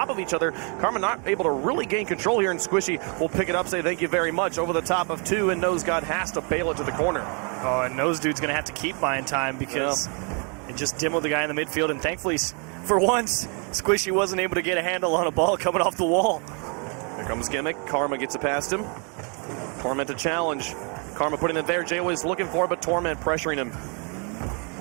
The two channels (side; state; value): left; quieter; 36.5 dB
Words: of each other. Karma not able to really gain control here, and Squishy will pick it up, say thank you very much, over the top of 2, and Nose God has to bail it to the corner. Oh, and Nose Dude's going to have to keep buying time because it just demoed the guy in the midfield, and thankfully, for once, Squishy wasn't able to get a handle on a ball coming off the wall. Here comes Gimmick. Karma gets it past him. Torment to challenge. Karma putting it there. Jaywiz looking for it, but Torment pressuring him.